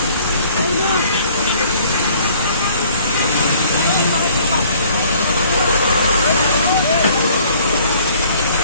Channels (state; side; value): inverted; both; correlation -0.56